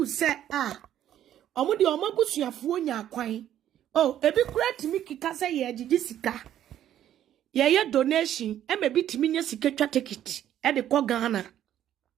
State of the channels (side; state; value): left; quieter; 11.3 dB